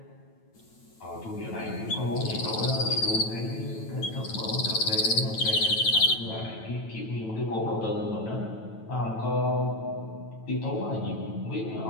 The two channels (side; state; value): right; late; 9.1 ms